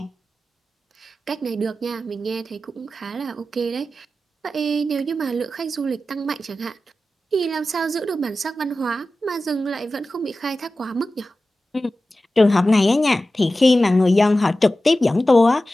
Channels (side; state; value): both; normal; correlation 0.94